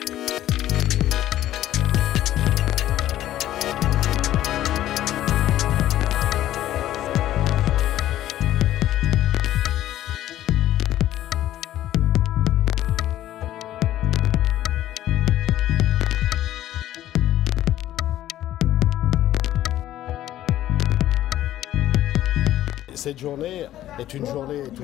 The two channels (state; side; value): quieter; right; 13.2 dB